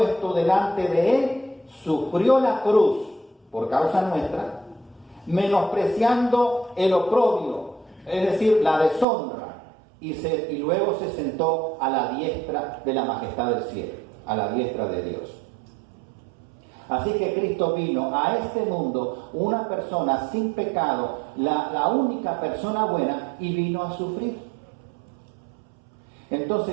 delante de él, sufrió la cruz por causa nuestra, menospreciando el oprobio, es decir, la deshonra, y luego se sentó a la diestra de la majestad del cielo, a la diestra de Dios. Así que Cristo vino a este mundo, una persona sin pecado, la única persona buena, y vino a sufrir. Entonces,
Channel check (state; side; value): drops out; left; at 9.1 s